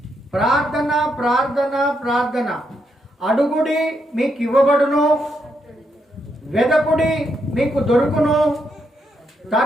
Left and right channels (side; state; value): both; normal; correlation 0.79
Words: ప్రార్థన ప్రార్థన ప్రార్థన, అడుగుడి మీకు ఇవ్వబడును, వెదకుడి మీకు దొరుకును,